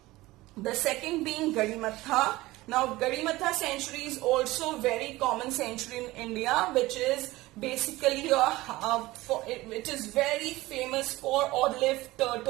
The second being Gadimatha. Now Gadimatha sanctuary is also very common sanctuary in India, which is basically it is very famous for olive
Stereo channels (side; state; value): left; quieter; 18.9 dB